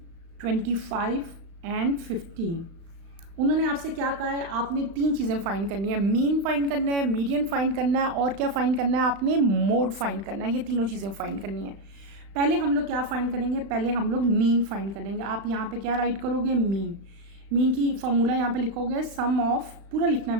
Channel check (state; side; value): late; left; 35 ms